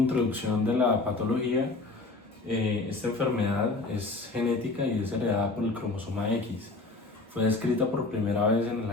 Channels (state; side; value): quieter; right; 3.3 dB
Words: de la patología, esta enfermedad es genética y es heredada por el cromosoma X. Fue descrita por primera vez en el